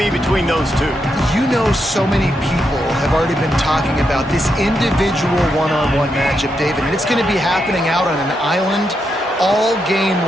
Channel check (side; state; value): both; normal; correlation 0.83